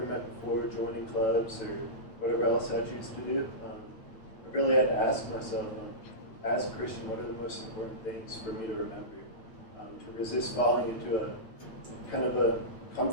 met before, joining clubs, or whatever else I choose to do. I really had to ask myself, as a Christian, what are the most important things for me to remember? To resist falling into a kind of a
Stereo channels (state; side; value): late; right; 9.0 ms